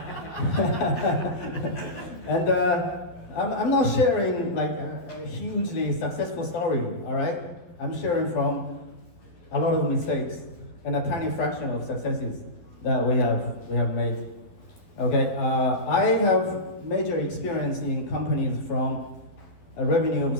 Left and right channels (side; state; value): right; late; 11 ms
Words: And I'm not sharing a hugely successful story. All right, I'm sharing from a lot of mistakes and a tiny fraction of successes that we have made. Okay, I have major experience in companies from a revenue of